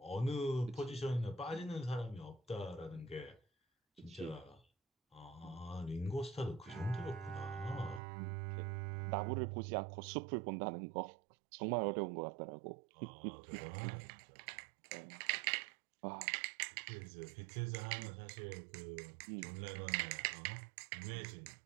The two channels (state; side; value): drops out; left; at 8.0 s